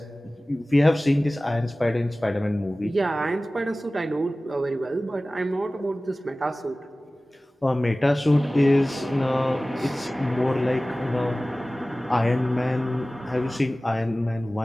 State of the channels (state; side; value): normal; both; correlation 0.97